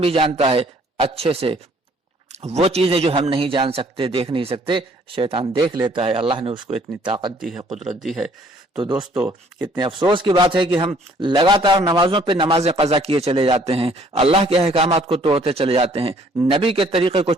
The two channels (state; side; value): normal; both; correlation 0.60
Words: بھی جانتا ہے اچھے سے۔ وہ چیزیں جو ہم نہیں جان سکتے، دیکھ نہیں سکتے، شیطان دیکھ لیتا ہے، اللہ نے اس کو اتنی طاقت دی ہے، قدرت دی ہے۔ تو دوستو کتنے افسوس کی بات ہے کہ ہم لگاتار نمازوں پہ نمازیں قضا کیے چلے جاتے ہیں، اللہ کے احکامات کو توڑتے چلے جاتے ہیں، نبی کے طریقے کو